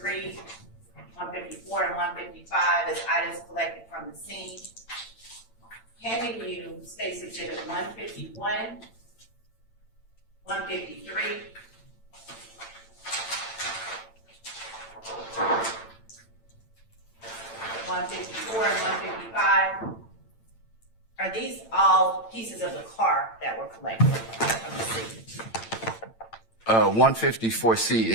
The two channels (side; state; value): right; late; 8.9 ms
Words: 154, and 155 as items collected from the scene. Handing you State's Exhibit 151, 153, 154 and 155. Are these all pieces of the car that were collected from the scene? 154C